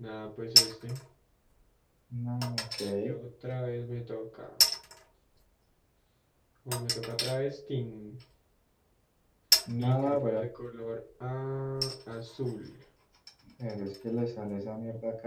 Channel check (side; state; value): both; identical; correlation 1.00